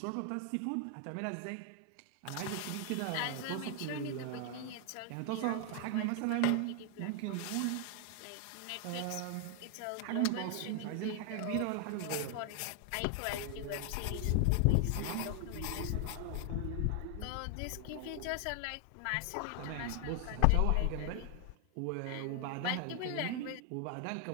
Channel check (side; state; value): both; different; correlation 0.00